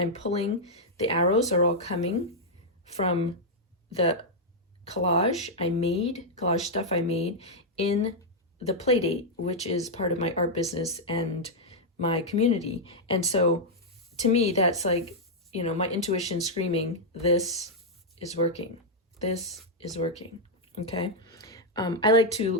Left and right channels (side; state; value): both; normal; correlation -0.04